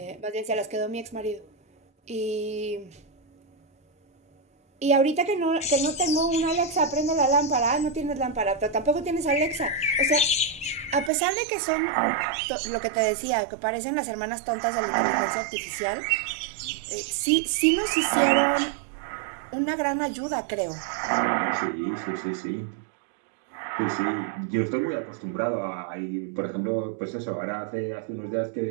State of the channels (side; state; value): left; drops out; at 11.1 s